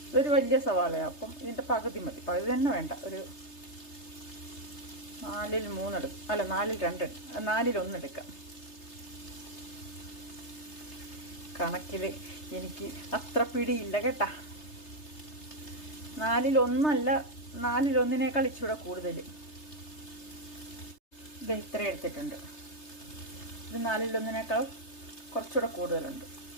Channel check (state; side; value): late; right; 3.3 ms